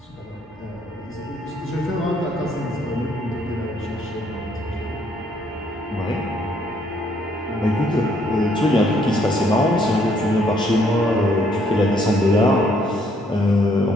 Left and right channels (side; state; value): both; normal; correlation 0.67